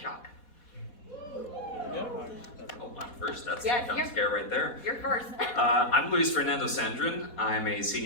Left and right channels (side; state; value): right; late; 4.1 ms